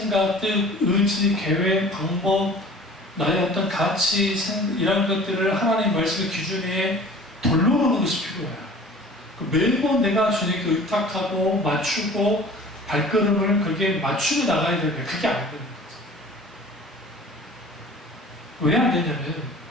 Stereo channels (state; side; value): normal; both; correlation 0.45